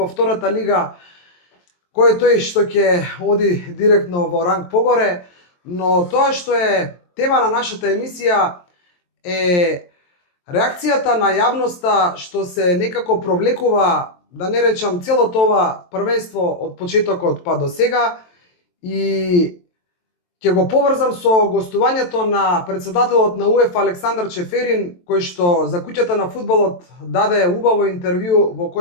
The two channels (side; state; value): right; late; 23 ms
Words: втората лига, кој е тој што ќе оди директно во ранг погоре, но тоа што е тема на нашата емисија е реакцијата на јавноста што се некако провлекува, да не речам, целото ова првенство од почетокот па до сега, и ќе го поврзам со гостувањето на председателот на УЕФА Александар Чеферин, кој што за куќата на фудбалот даде убаво интервју во